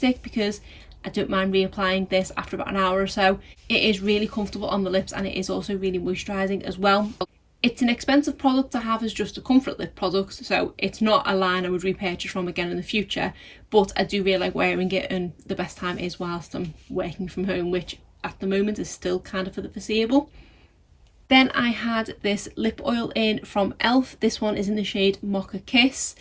because I don't mind reapplying this after about an hour or so. It is really comfortable on the lips, and it is also really moisturising as well. It's an expensive product to have as just a comfort lip product, so it's not a line I would repurchase from again in the future, but I do really like wearing it, and the best time is whilst I'm working from home, which at the moment is still kind of for the foreseeable. Then I had this lip oil in from e.l.f. This one is in the shade Mocha Kiss.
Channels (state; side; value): identical; both; correlation 1.00